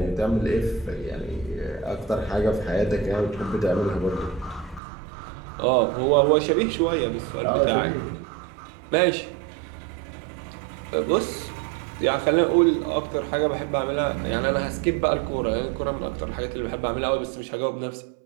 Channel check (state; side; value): drops out; left; at 4.8 s